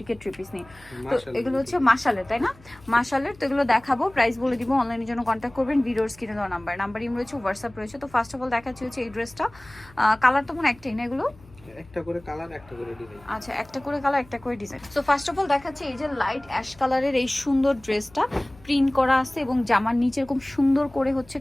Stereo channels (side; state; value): left; noise; hum, 24 dB below the sound